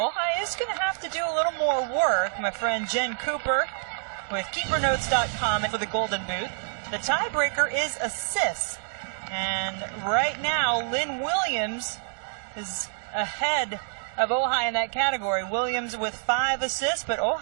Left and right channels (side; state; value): left; silent; digital silence